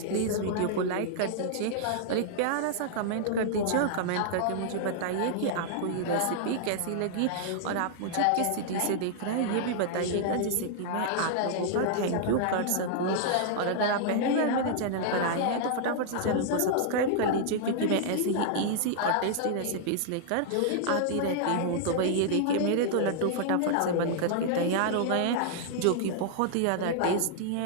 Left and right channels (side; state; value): both; different; correlation -0.01